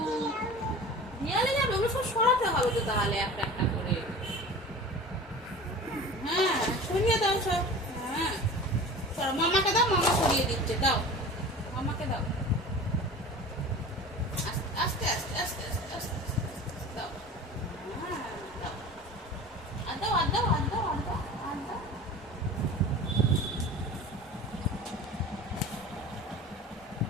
নিয়ালে যাবে ওগুলো সব সরাতে হবে তো তাহলে একটা একটা করে হ্যাঁ সরিয়ে দাও সব হ্যাঁ সর মামাকে দাও মামা সরিয়ে দিচ্ছে দাও মামাকে দাও আস্তে আস্তে আস্তে আস্তে আস্তে দাও হ্যাঁ দাও আর দাও আর দাও আর দাও আর দাও আর দাও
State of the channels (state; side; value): normal; both; correlation 0.38